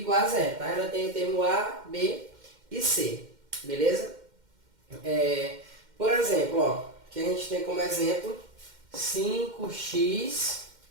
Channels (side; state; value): left; late; 2.1 ms